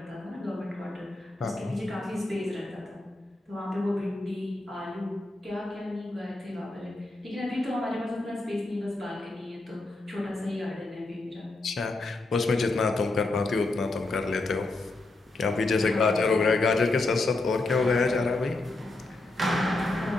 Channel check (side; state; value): right; quieter; 3.0 dB